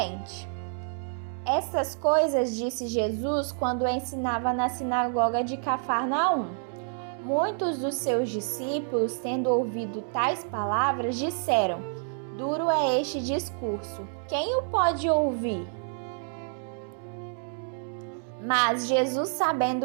Estas coisas disse Jesus quando ensinava na sinagoga de Cafarnaum. Muitos dos seus discípulos, tendo ouvido tais palavras, disseram: duro é este discurso, quem o pode ouvir? Mas Jesus,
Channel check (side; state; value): left; silent; digital silence